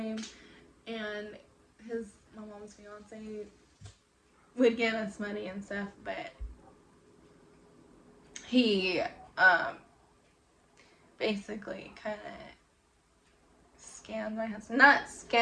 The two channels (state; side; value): identical; both; correlation 1.00